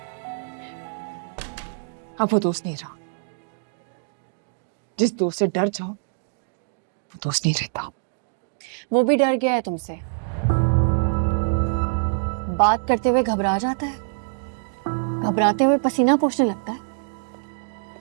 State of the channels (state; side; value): silent; left; digital silence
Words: अब वो दोस्त नहीं रहा। जिस दोस्त से डर जाओ वो दोस्त नहीं रहता। वो भी डर गया है तुमसे, बात करते हुए घबरा जाता है, घबराते हुए पसीना पोंछने लगता है।